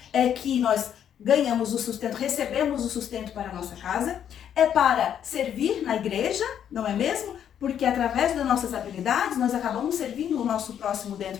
é que nós ganhamos o sustento, recebemos o sustento para a nossa casa. É para servir na igreja, não é mesmo? Porque através das nossas habilidades nós acabamos servindo o nosso próximo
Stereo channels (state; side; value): quieter; right; 9.3 dB